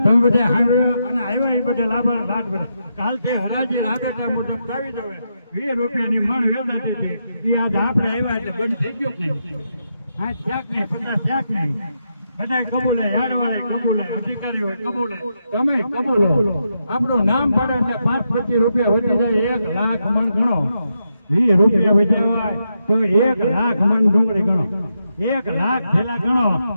તમે બધા સાંભળ્યા અને આવ્યા એ બધા લાભાર રાત બધા કાલથી હરાજી રાબેટા મુજબ લાવી દો. 20 રૂપિયાની મણ વેચાતી છે એ આજ આપણે આવ્યા એટલે બંધ થઈ ગયો નહીં. હા શાક નહીં 50 શાક નહીં બધા કબૂલે યાર્ડવાળા કબૂલે અધિકારીઓ કબૂલે તમે કબૂલો. આપણું નામ પડે એટલે 5-25 રૂપિયા વધી જાય 1 લાખ મણ ગણો. 20 રૂપિયા વધ્યા તો 1 લાખ મણ ડુંગળી ગણો. 1 લાખ થેલા ગણો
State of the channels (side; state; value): both; inverted; correlation -0.83